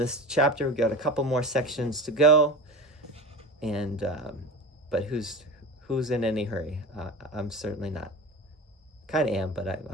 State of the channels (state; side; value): normal; both; correlation 0.31